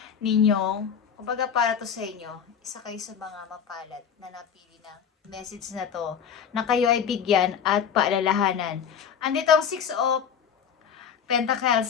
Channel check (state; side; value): quieter; right; 7.6 dB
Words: ninyong, kumbaga para to sa inyo, isa kayo sa mga mapalad na napili ng message na to, na kayo ay bigyan at paalalahanan. Andito ang 6 of